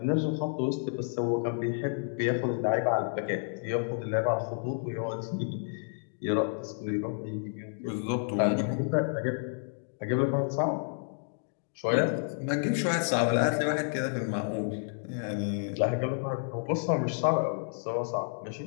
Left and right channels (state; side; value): silent; right; digital silence